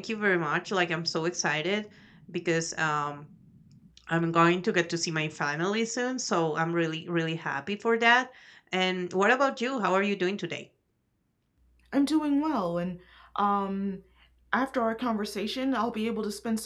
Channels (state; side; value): identical; both; correlation 1.00